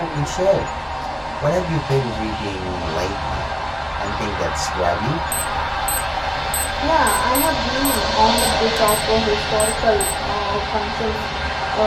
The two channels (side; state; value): both; identical; correlation 1.00